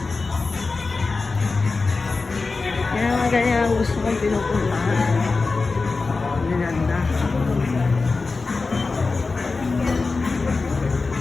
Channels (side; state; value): right; quieter; 4.0 dB